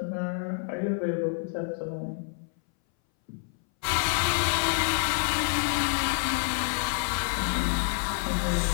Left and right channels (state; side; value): silent; right; 59 dB below the other